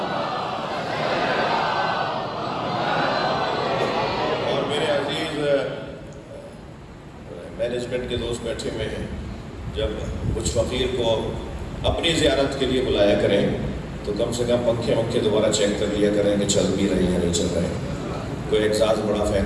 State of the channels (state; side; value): identical; both; correlation 1.00